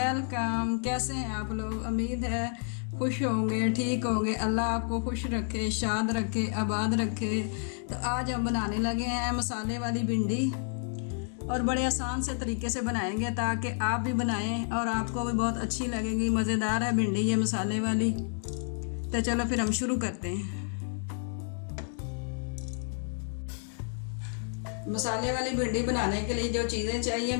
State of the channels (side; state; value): right; silent; 57 dB below the other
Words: कैसे हैं आप लोग? उम्मीद है खुश होंगे, ठीक होंगे। अल्लाह आपको खुश रखे, शाद रखे, आबाद रखे। तो आज हम बनाने लगे हैं मसाले वाली भिंडी, और बड़े आसान से तरीके से बनाएंगे ताकि आप भी बनाएं और आपको भी बहुत अच्छी लगेगी। मज़ेदार है भिंडी ये मसाले वाली। तो चलो फिर हम शुरू करते हैं। मसाले वाली भिंडी बनाने के लिए जो चीज़ें चाहिए,